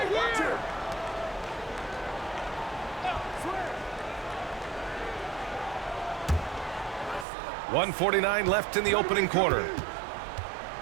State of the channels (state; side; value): drops out; left; at 7.2 s